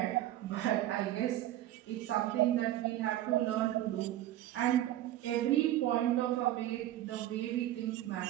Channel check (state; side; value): quieter; left; 13.6 dB